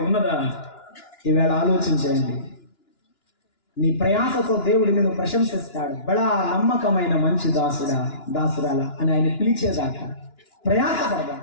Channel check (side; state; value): right; late; 2.9 ms